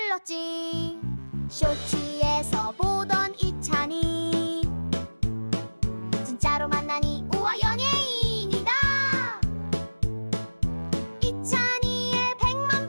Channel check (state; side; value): inverted; both; correlation -1.00